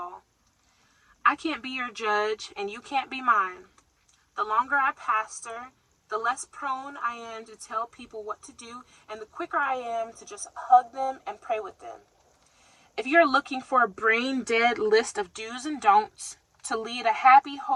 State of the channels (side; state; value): both; identical; correlation 1.00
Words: I can't be your judge, and you can't be mine. The longer I pastor, the less prone I am to tell people what to do, and the quicker I am to just hug them and pray with them. If you're looking for a brain-dead list of do's and don'ts to lead a happy,